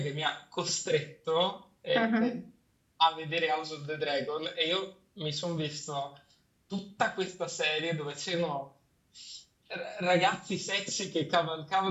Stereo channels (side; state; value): both; identical; correlation 1.00